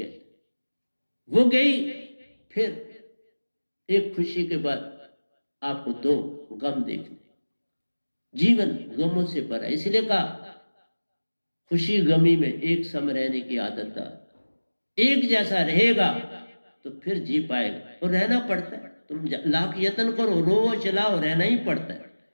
वो गई, फिर एक खुशी के बाद आपको दो गम देखने। जीवन गमों से भरा, इसलिए कहा खुशी गमी में एक सम रहने की आदत है। एक जैसा रहेगा तो फिर जी पाएगा, और रहना पड़ता है। तुम लाख यत्न करो, रो चलाओ, रहना ही पड़ता है।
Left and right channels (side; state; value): both; inverted; correlation -1.00